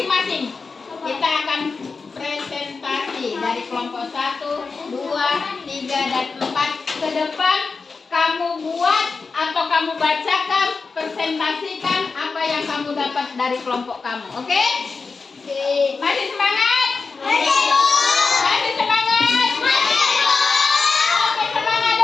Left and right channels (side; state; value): right; quieter; 4.5 dB